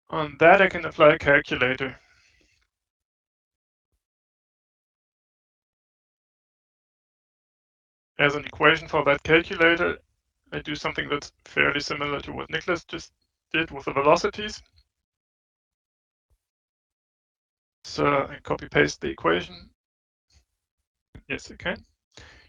on that, I can apply a calculator. As an equation for that calculator, I do something that's fairly similar to what Nicholas just did with the velocities. So I copy paste the equation. Yes, I can.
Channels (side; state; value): both; identical; correlation 1.00